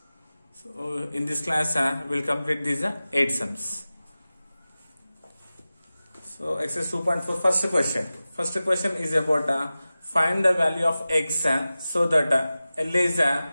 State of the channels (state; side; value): inverted; both; correlation -0.96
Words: So in this class we will complete these 8 sums. So exercise 2.4 first question. First question is about find the value of x so that L is